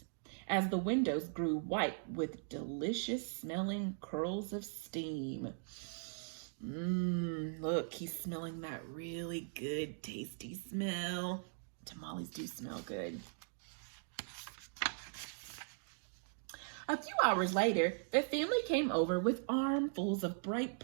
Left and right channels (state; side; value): silent; left; digital silence